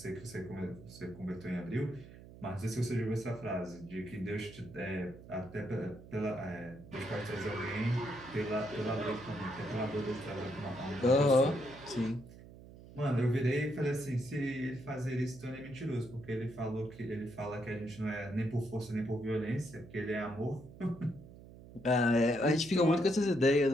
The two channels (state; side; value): noise; right; hum, 18 dB below the sound